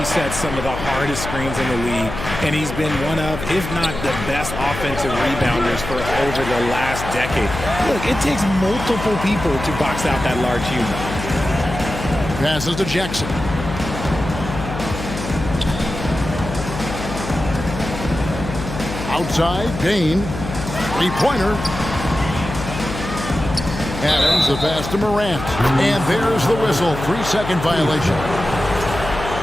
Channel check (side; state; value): left; noise; hum, 8 dB below the sound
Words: set some of the hardest screens in the league, and he's been one of, if not the best offensive rebounders for over the last decade. Look, it takes multiple people to box out that large human. Passes to Jackson. Outside, Bain. Three-pointer. Adams, the pass to Morant. And there's the whistle. 3-second violation.